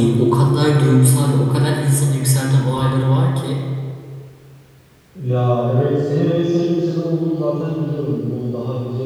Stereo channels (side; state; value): both; identical; correlation 1.00